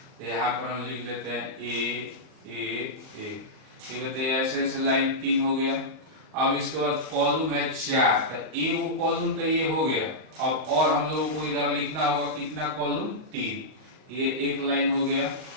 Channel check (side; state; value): left; late; 38 ms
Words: यहाँ पर हम लिख लेते हैं ए ए ए, ठीक है, तो ऐसे ऐसे लाइन 3 हो गया। अब इसके बाद कॉलम है 4, तो ए वो कॉलम तो ये हो गया। अब और हम लोगों को इधर लिखना होगा कितना कॉलम, 3, ये एक लाइन हो गया।